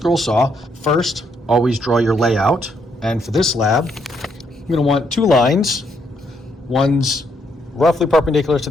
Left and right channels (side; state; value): both; normal; correlation 0.74